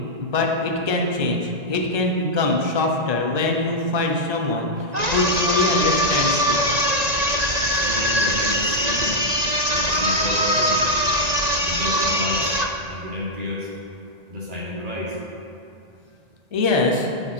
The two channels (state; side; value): late; left; 1.9 ms